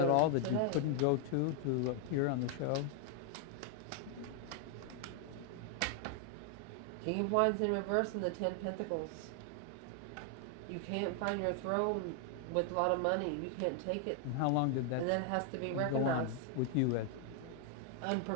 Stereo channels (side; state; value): both; different; correlation 0.00